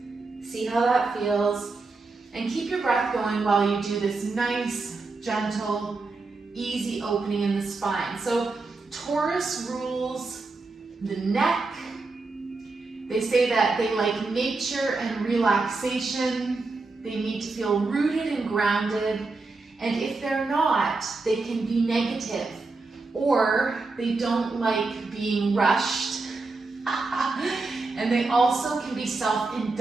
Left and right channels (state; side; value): quieter; left; 3.7 dB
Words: See how that feels. And keep your breath going while you do this nice, gentle, easy opening in the spine. So Taurus rules the neck. They say that they like nature and relaxation. They need to feel rooted and grounded. And if they're not, they can be negative, or they don't like being rushed. And they also can be